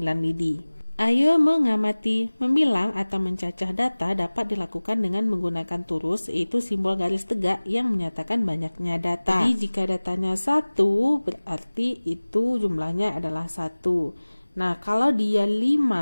lidi. Ayo mengamati. Membilang atau mencacah data dapat dilakukan dengan menggunakan turus, yaitu simbol garis tegak yang menyatakan banyaknya data. Jadi jika datanya 1, berarti itu jumlahnya adalah 1. Nah, kalau dia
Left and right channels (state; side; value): inverted; both; correlation -1.00